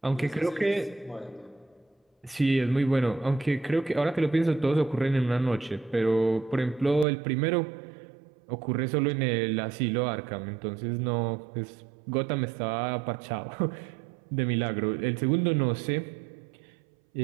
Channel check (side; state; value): left; drops out; at 7.1 s